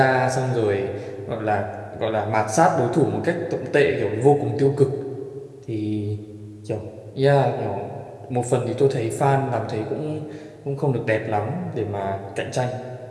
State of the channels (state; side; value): identical; both; correlation 1.00